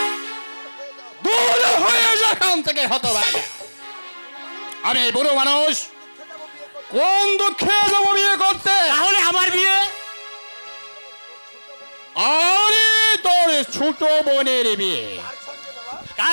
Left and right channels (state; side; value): inverted; both; correlation -1.00